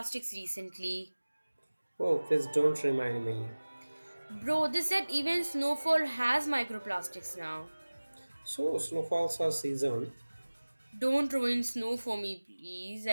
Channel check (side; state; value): both; inverted; correlation -1.00